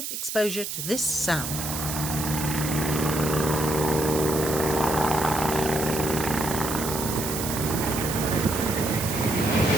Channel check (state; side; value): noise; right; hiss, 5 dB below the sound